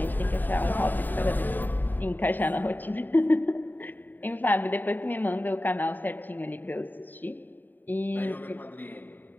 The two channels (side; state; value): right; late; 0.089 ms